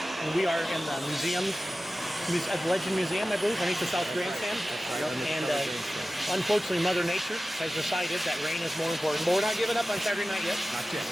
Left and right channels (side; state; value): both; normal; correlation 0.95